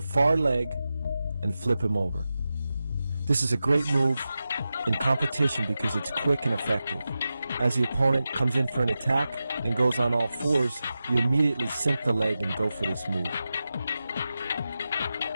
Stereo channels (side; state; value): both; inverted; correlation -0.93